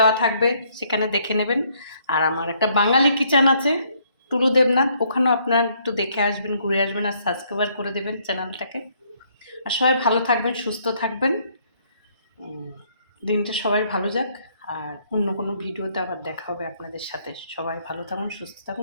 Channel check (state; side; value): inverted; both; correlation -0.67